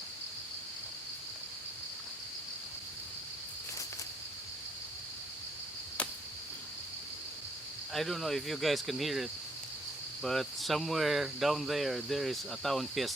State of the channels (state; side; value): normal; both; correlation 0.69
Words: I don't know if you guys can hear it, but somewhere down there is a town